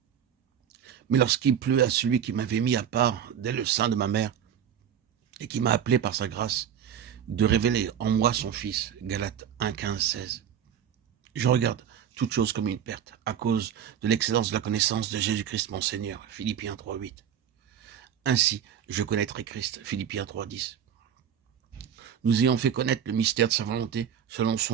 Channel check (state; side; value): quieter; left; 8.9 dB